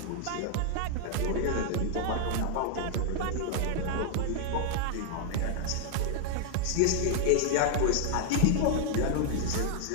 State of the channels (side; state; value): both; different; correlation -0.01